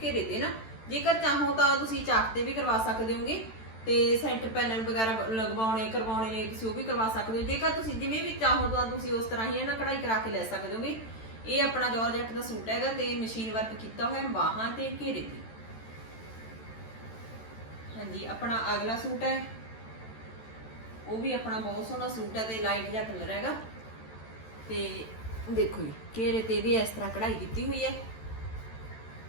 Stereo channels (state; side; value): late; right; 13 ms